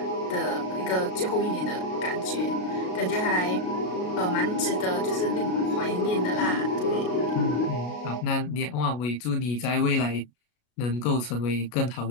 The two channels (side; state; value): right; late; 33 ms